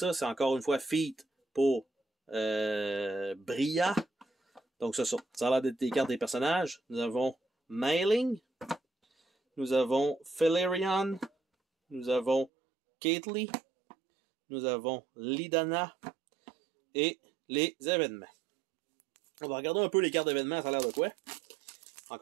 C'est encore une fois feat pour Bria. Donc ça a l'air d'être des cartes des personnages. Nous avons Mailing, nous avons Felerion, nous avons Caitlyn, nous avons Lidana et les événements. On va regarder un peu les cartes d'événements, ça a l'air de quoi?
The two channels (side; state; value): left; drops out; at 12.5 s